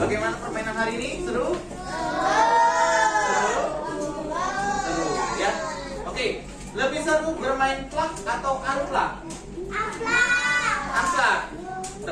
permainan hari ini? Seru? Seru, ya. Oke, lebih seru bermain plak atau unplak? Unplak.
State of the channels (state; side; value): identical; both; correlation 1.00